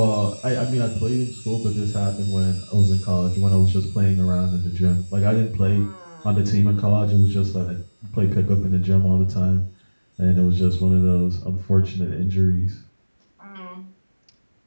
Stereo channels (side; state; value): both; inverted; correlation -1.00